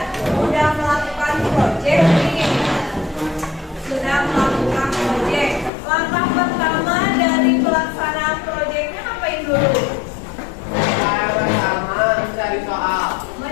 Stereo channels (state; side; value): drops out; right; at 5.7 s